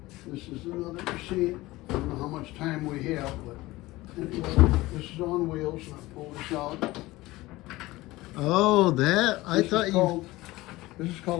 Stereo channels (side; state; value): right; quieter; 19.1 dB